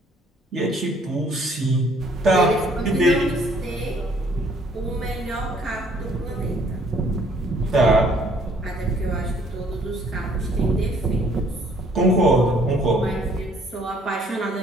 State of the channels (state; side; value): normal; both; correlation 0.62